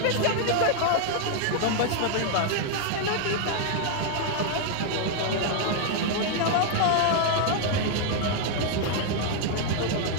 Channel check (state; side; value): different; both; correlation 0.00